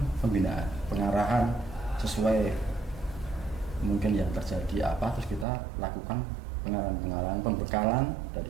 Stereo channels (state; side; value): drops out; left; at 5.5 s